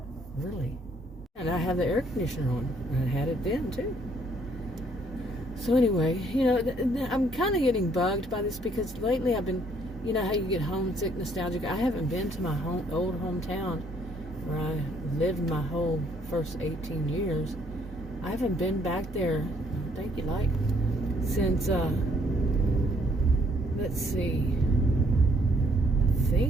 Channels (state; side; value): normal; both; correlation 0.65